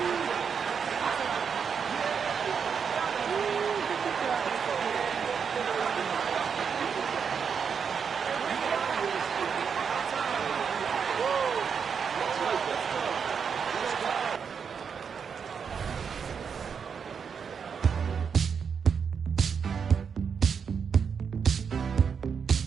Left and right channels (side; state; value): left; quieter; 6.5 dB